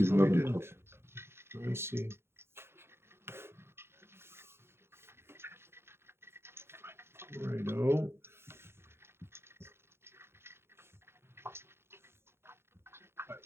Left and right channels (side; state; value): left; late; 0.12 ms